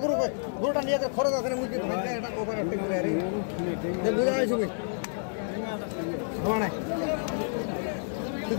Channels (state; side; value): silent; right; digital silence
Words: গরুটা নিয়ে খরচ আছে না মুরগি